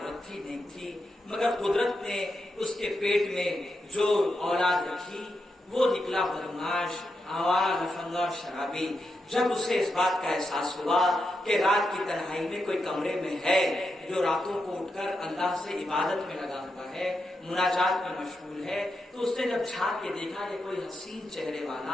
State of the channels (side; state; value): both; normal; correlation 0.86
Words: تھی, نیک تھی, مگر قدرت نے اس کے پیٹ میں جو اولاد رکھی وہ نکلا بدماش, آوارہ, لفنگا اور شرابی. جب اسے اس بات کا احساس ہوا کہ رات کی تنہائی میں کوئی کمرے میں ہے جو راتوں کو اٹھ کر اللہ سے عبادت میں لگا ہوا ہے, مناجات میں مشغول ہے, تو اس نے جب جھانک کے دیکھا کہ کوئی حسین چہرے